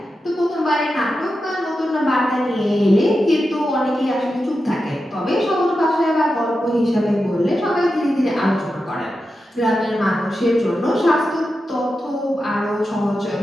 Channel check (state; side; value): normal; both; correlation 0.90